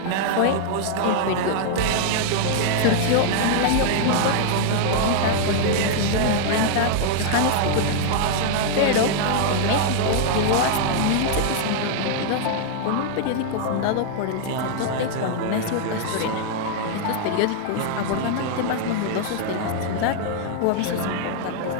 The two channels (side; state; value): both; different; correlation 0.00